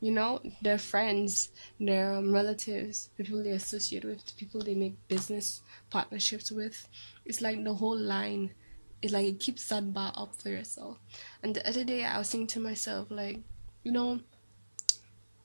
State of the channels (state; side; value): inverted; both; correlation -1.00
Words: Their friends, their relatives, the people they associate with, the people they make business partnerships with. It's like the whole line. It's like it keeps that bar up for yourself. And the other day I was thinking to myself, like,